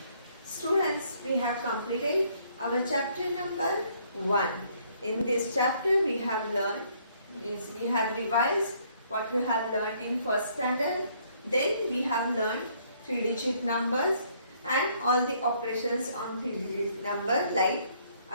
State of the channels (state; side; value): inverted; both; correlation -0.66